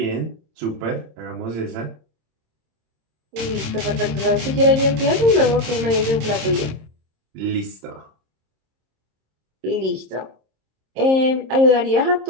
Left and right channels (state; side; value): late; left; 26 ms